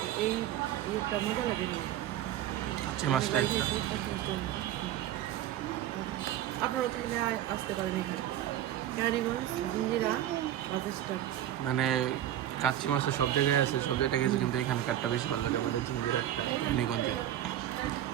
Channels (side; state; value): left; quieter; 12.3 dB